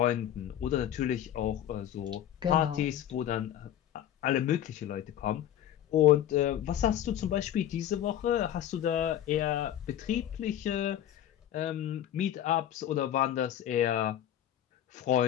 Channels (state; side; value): quieter; right; 11.3 dB